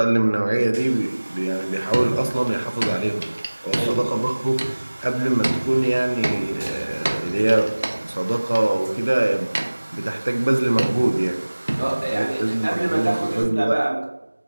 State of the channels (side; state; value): both; inverted; correlation -1.00